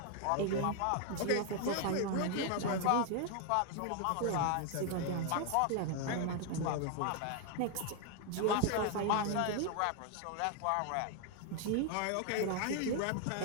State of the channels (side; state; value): both; different; correlation 0.01